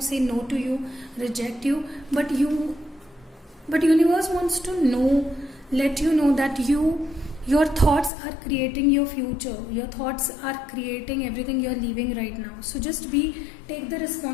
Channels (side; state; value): right; drops out; at 8.1 s